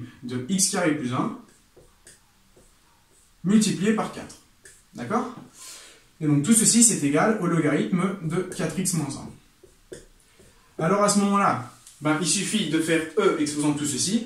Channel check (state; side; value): identical; both; correlation 1.00